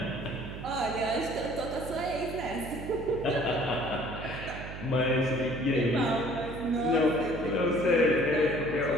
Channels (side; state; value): right; noise; hum, 10 dB below the sound